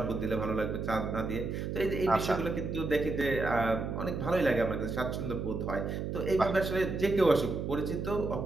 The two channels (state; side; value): noise; right; hum, 3 dB below the sound